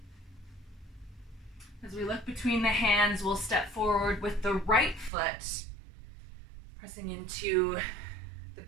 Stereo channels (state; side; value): drops out; left; at 5.1 s